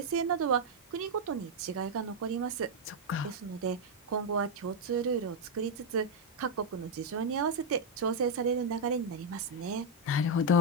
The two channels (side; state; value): both; normal; correlation 0.00